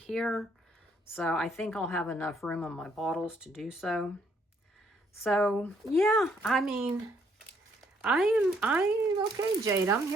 So I think I'll have enough room on my bottles to do so. So yeah, I mean, I'm okay, Jade. I'm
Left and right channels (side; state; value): both; normal; correlation 0.69